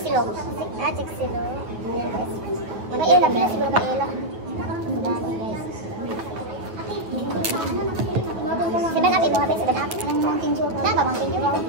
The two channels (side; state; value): left; late; 9.3 ms